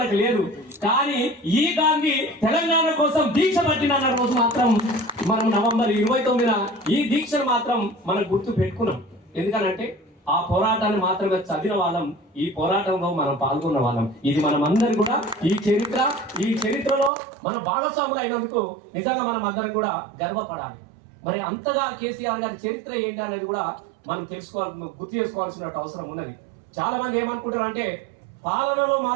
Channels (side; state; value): left; drops out; at 17.1 s